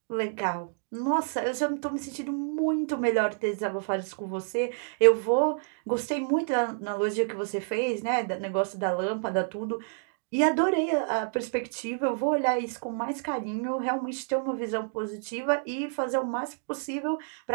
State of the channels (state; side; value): silent; left; digital silence